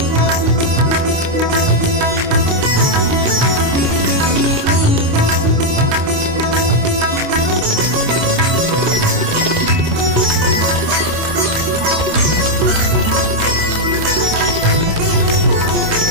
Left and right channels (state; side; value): late; left; 26 ms